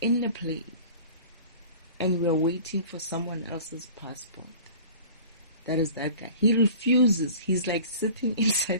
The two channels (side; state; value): both; inverted; correlation -0.43